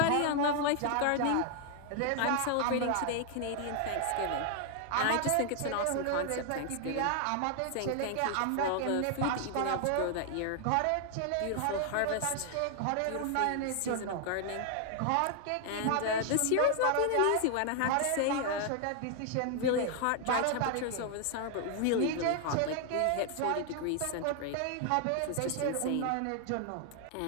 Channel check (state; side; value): different; both; correlation 0.00